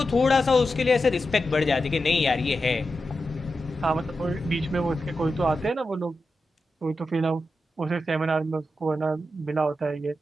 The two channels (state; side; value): normal; both; correlation 0.89